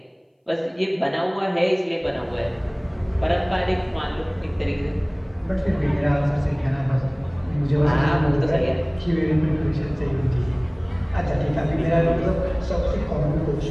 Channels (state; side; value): identical; both; correlation 1.00